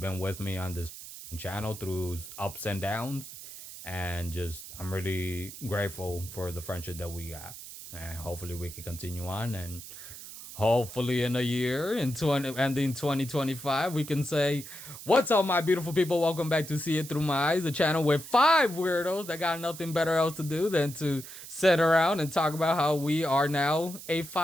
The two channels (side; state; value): right; noise; hiss, 13 dB below the sound